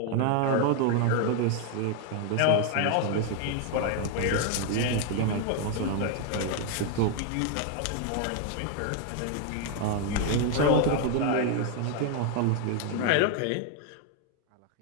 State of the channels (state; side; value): different; both; correlation 0.01